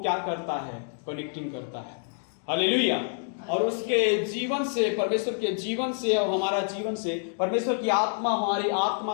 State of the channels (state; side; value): silent; right; digital silence